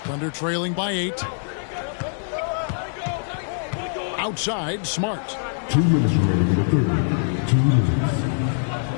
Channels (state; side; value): silent; right; 55 dB below the other